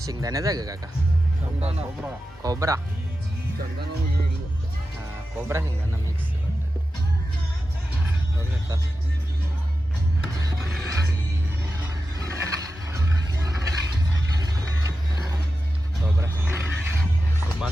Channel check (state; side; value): normal; both; correlation 0.92